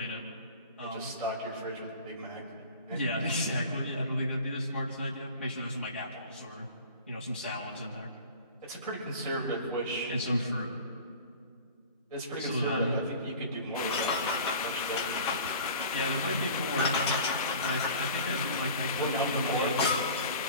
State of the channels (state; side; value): inverted; both; correlation -0.40